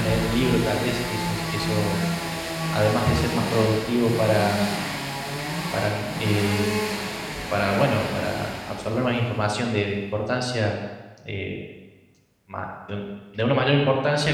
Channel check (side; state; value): both; identical; correlation 1.00